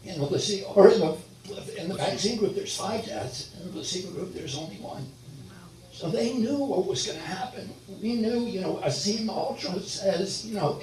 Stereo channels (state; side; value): identical; both; correlation 1.00